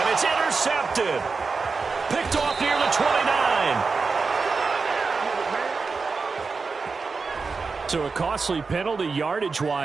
it's intercepted. Picked off near the 29. So a costly penalty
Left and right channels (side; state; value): left; quieter; 4.6 dB